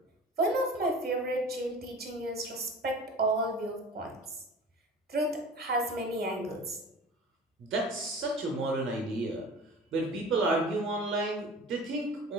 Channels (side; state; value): both; normal; correlation 0.39